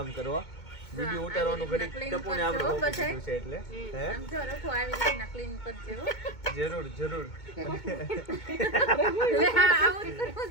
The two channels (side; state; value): right; late; 2.2 ms